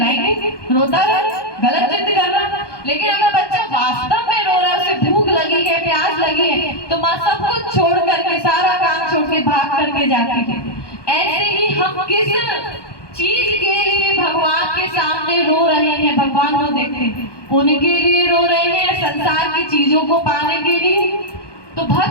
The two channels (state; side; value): late; right; 1.2 ms